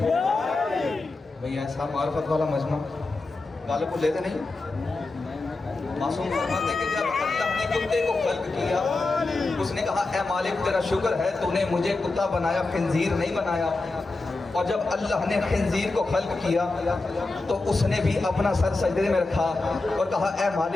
भाई ऐसा मार्फत वाला मजमा गाले को लेते नहीं। मासूम फरमाते कि जब अल्लाह ने कुत्ते को खल्क किया, उसने कहा ए मालिक तेरा शुक्र है तूने मुझे कुत्ता बनाया, खिंजीर नहीं बनाया। और जब अल्लाह ने खिंजीर को खल्क किया तो उसने भी अपना सर सजदे में रखा और कहा ए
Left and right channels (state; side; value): quieter; right; 3.3 dB